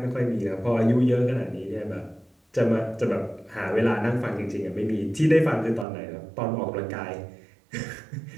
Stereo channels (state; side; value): drops out; left; at 5.9 s